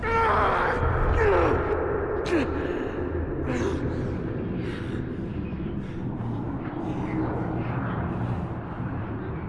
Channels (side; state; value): both; identical; correlation 1.00